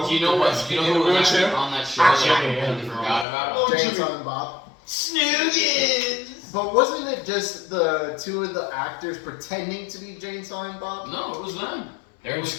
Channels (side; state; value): right; drops out; at 3.2 s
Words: Do you know what? Do you know who was actually on that show that I completely forgot about? Jay and Silent Bob. Snoogans! But wasn't it just the 2 of the actors pretending to be Jay and Silent Bob? No, it was them. They're It in was,